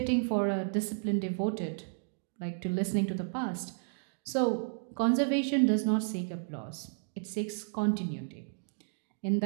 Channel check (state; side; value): silent; left; digital silence